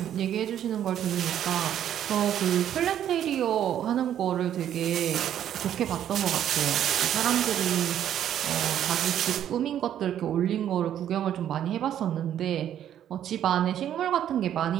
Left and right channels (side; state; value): left; quieter; 10.5 dB